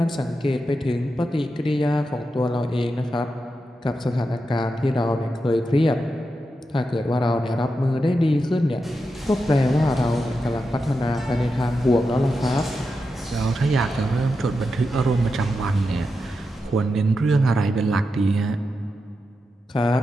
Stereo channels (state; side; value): normal; both; correlation 0.88